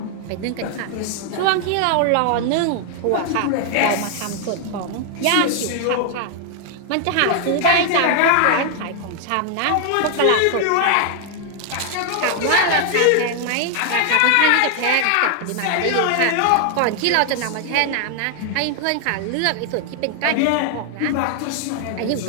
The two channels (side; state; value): both; different; correlation 0.00